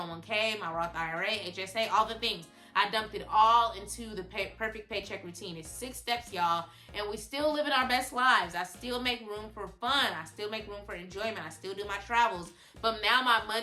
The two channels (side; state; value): both; identical; correlation 1.00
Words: my Roth IRA, HSA, all the things. I dumped it all into the perfect paycheck routine. It's 6 steps, y'all, and we still living our best lives. I still make room for fun. I still make room for enjoyment. I still do my travels. But now my